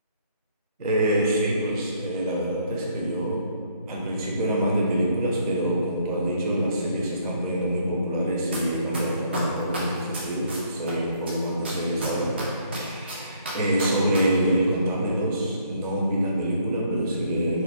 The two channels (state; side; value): inverted; both; correlation -0.66